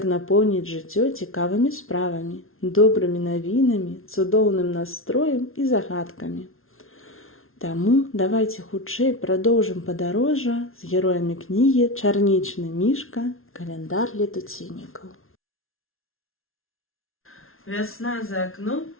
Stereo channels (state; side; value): late; right; 0.61 ms